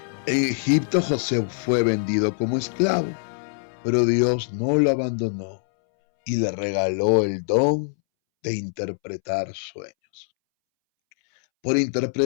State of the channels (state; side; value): silent; right; 63 dB below the other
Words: En Egipto José fue vendido como esclavo, pero Dios no lo abandonó y le regaló el don de interpretar sueños. Por